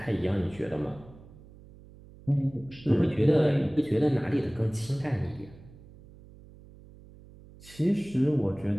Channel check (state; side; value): noise; right; hum, 21 dB below the sound